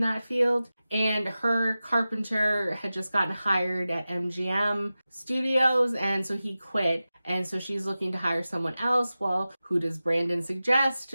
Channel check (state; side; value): inverted; both; correlation -0.95